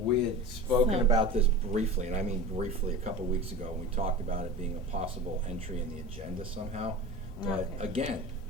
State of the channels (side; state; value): both; normal; correlation 0.32